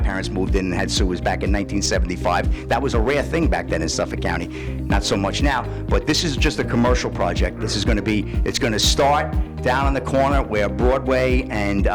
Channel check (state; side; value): identical; both; correlation 1.00